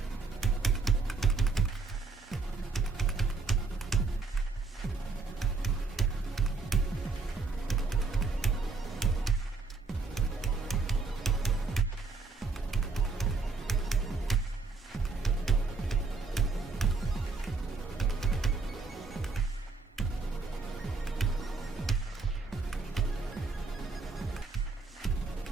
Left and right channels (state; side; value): quieter; left; 4.0 dB